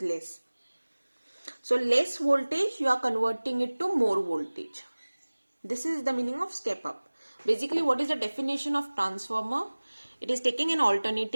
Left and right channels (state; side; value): inverted; both; correlation -1.00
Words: less. So less voltage, you are converting it to more voltage. This is the meaning of step up. Basically, what is the definition of transformer? It is taking an